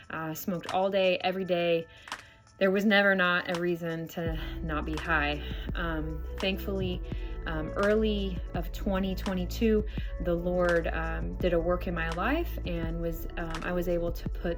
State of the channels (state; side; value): identical; both; correlation 1.00